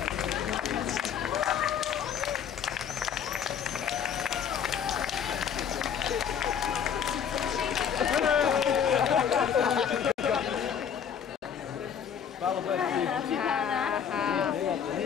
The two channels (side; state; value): right; quieter; 8.0 dB